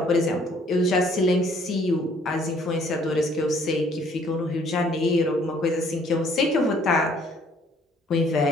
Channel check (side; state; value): both; normal; correlation 0.61